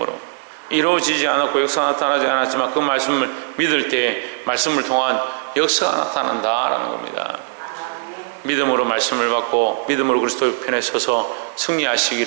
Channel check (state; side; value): silent; left; digital silence